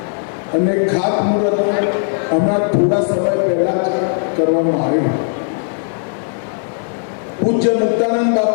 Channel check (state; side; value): silent; right; digital silence